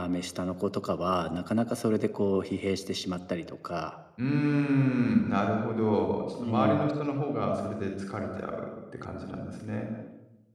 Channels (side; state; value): both; identical; correlation 1.00